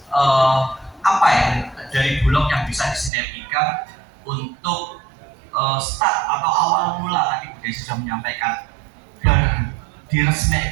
apa yang dari Bulog yang bisa disinergikan untuk start atau awal mula. Tadi Bu Desi sudah menyampaikan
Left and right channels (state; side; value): drops out; left; at 3.1 s